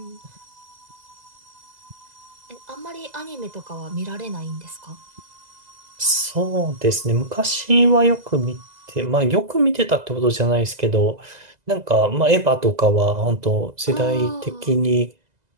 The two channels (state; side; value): late; left; 2.0 ms